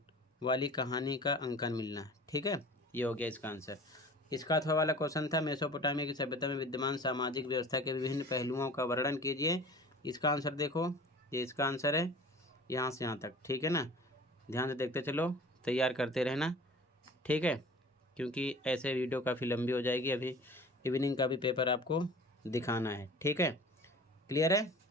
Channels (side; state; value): both; normal; correlation 0.43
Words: वाली कहानी का अंकन मिलना। ठीक है, ये हो गया इसका आंसर। इसका अथवा वाला क्वेश्चन था, मेसोपोटामिया की सभ्यता में विद्यमान सामाजिक व्यवस्था के विभिन्न पहलुओं का वर्णन कीजिए। इसका आंसर देखो, ये इसका आंसर है यहाँ से यहाँ तक, ठीक है ना। ध्यान से देखते चलो, तैयार करते रहना, ठीक है, क्योंकि ऐसे वीडियो काफ़ी लंबी हो जाएगी। अभी इवनिंग का भी पेपर आपको दिखाना है, ठीक है, क्लियर है।